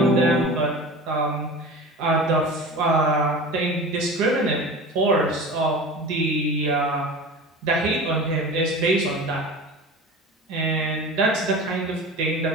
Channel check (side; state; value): both; normal; correlation 0.34